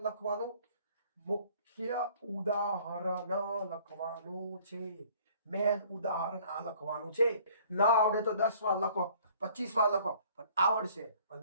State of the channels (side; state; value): both; inverted; correlation -0.55